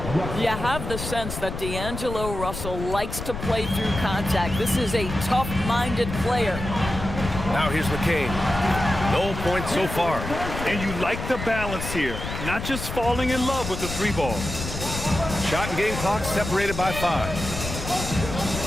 You have the sense that D'Angelo Russell likes to play through contact. This is a tough-minded player. Now here's McCain. No points so far. And you like the balance here, not just falling in love with the 3-ball. Shot and game clock separated by 5.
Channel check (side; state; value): left; noise; rumble, 7 dB below the sound